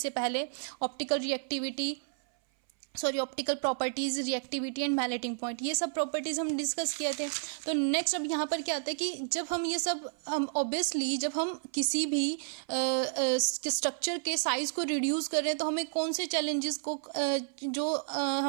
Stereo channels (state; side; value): silent; left; 57 dB below the other